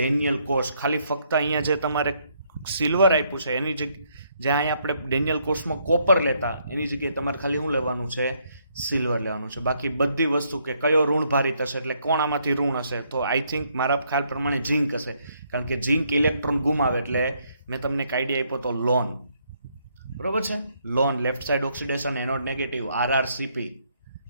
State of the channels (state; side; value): inverted; both; correlation -0.72